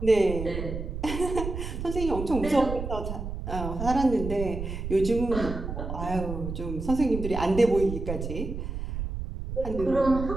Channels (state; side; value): noise; right; rumble, 6 dB below the sound